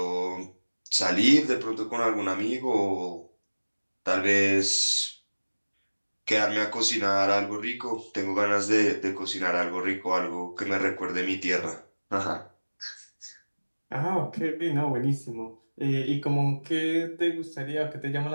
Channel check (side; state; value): both; inverted; correlation -1.00